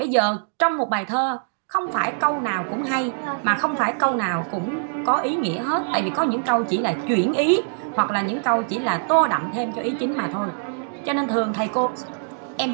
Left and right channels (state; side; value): silent; left; digital silence